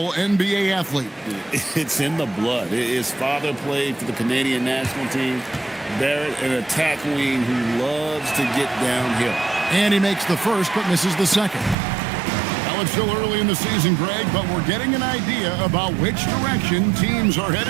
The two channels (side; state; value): left; drops out; at 11.8 s